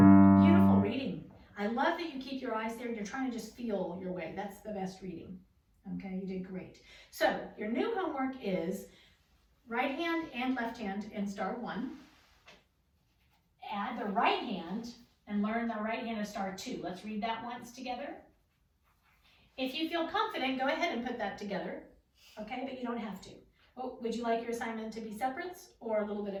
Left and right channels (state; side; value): identical; both; correlation 1.00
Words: Beautiful reading. I love that you keep your eyes there. You're trying to just feel your way. That's the best reading. Okay, you did great. So your new homework is right hand and left hand in star 1. Add the right hand and learn the right hand of star 2. Let's read that once together. If you feel confident, go ahead and put that together. Okay, but you don't have to. Oh, would you like your assignment to be separates or a little bit